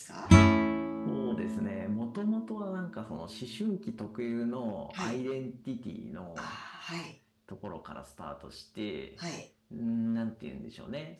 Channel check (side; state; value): both; identical; correlation 1.00